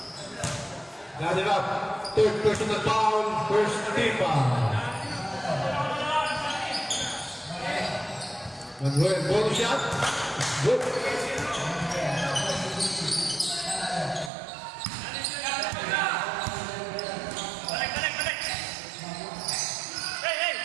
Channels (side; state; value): left; drops out; at 14.3 s